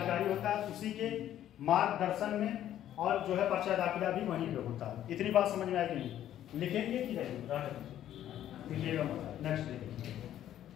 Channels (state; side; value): quieter; right; 11.7 dB